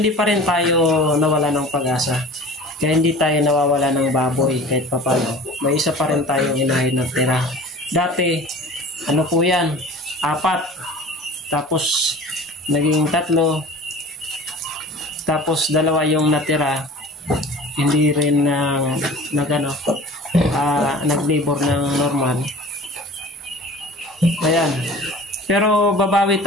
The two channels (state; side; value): normal; both; correlation 0.41